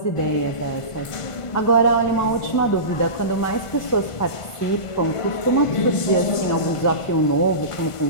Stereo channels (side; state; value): right; late; 1.5 ms